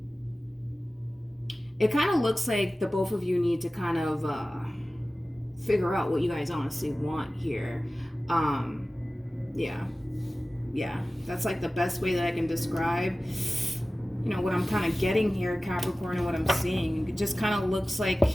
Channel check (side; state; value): both; normal; correlation 0.96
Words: It kind of looks like the both of you need to kind of figure out what you guys honestly want here. Yeah, that's like the best way that I can describe, what I'm kind of getting here, Capricorn, and what I'm seeing. It just kind of looks like